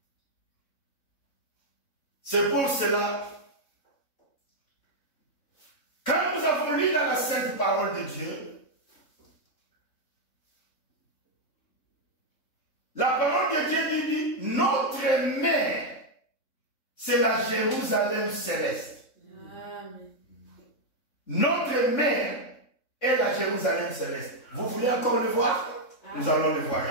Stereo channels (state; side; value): late; right; 3.6 ms